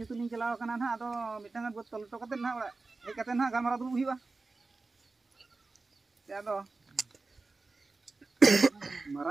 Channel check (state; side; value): quieter; left; 3.7 dB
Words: ᱤᱧ ᱪᱟᱞᱟᱣ ᱟᱠᱟᱱᱟ ᱱᱟᱦᱟᱜ ᱟᱫᱚ ᱢᱤᱫᱴᱟᱝ ᱵᱟᱹᱫ ᱛᱚᱞ ᱦᱚᱴᱚ ᱠᱟᱛᱮᱫ ᱱᱟᱦᱟᱜ ᱚᱲᱟᱜ ᱦᱮᱡ ᱠᱟᱛᱮᱫ ᱱᱟᱦᱟᱜ ᱜᱟᱞᱢᱟᱨᱟᱣ ᱫᱩᱲᱩᱵ ᱦᱩᱭᱩᱜᱼᱟ ᱟᱫᱚ